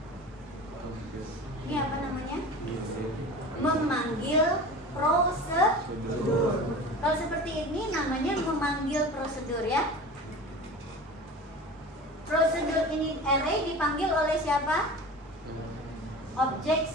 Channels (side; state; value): both; normal; correlation 0.35